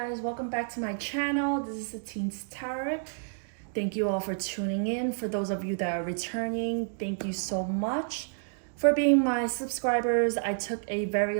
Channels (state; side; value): silent; left; digital silence